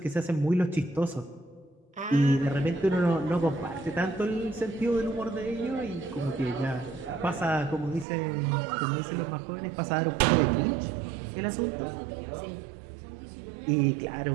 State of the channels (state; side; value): drops out; left; at 8.1 s